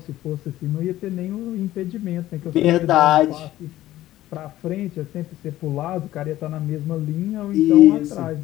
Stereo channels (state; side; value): quieter; right; 14.6 dB